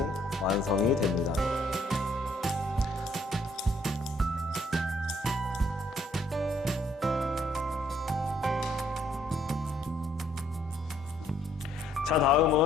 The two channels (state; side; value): normal; both; correlation 0.66